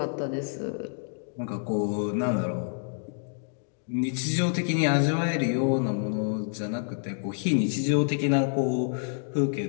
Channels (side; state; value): right; silent; digital silence